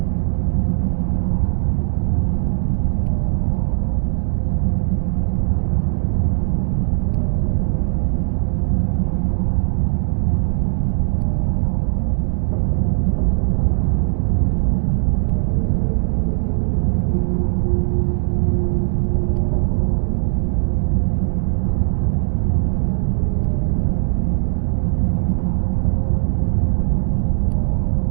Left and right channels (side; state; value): left; silent; digital silence